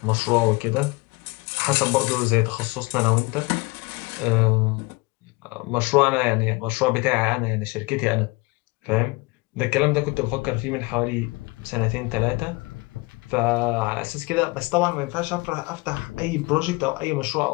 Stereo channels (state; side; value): quieter; right; 25.9 dB